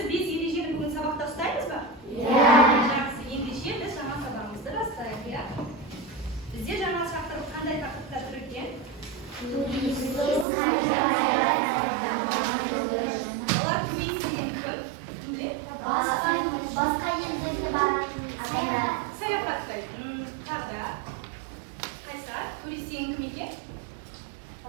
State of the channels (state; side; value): drops out; left; at 10.5 s